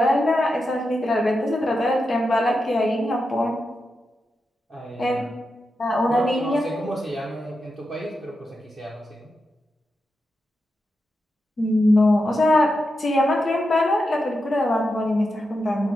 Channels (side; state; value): both; normal; correlation 0.88